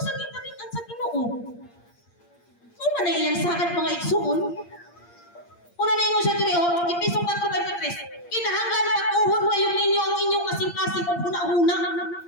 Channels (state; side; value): late; right; 8.6 ms